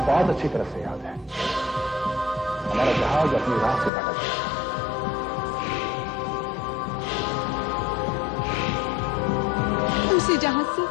बहुत अच्छी तरह से याद है। हमारा जहाज अपनी राह से भटक गया। उसी जहाज से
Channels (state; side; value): drops out; right; at 3.9 s